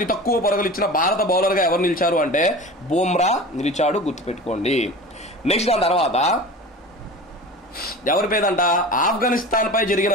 తక్కువ పరుగులు ఇచ్చిన భారత బౌలర్ గా ఎవరు నిలిచారు అంటే బుమ్రా నిలిచాడు, గుర్తుపెట్టుకోండి. నెక్స్ట్ దాని తర్వాత ఎవరి పేదంట, ఆఫ్ఘనిస్తాన్ పై జరిగిన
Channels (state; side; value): normal; both; correlation 0.35